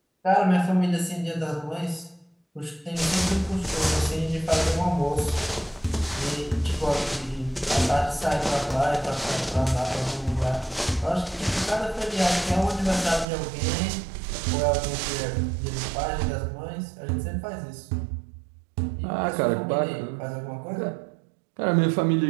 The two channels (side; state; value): left; drops out; at 13.2 s